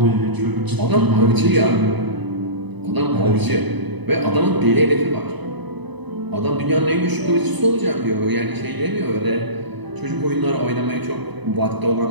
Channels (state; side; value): late; left; 1.0 ms